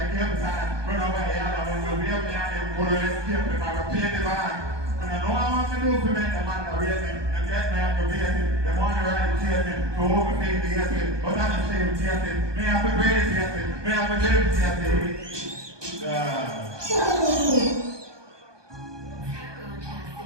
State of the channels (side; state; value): left; late; 1.2 ms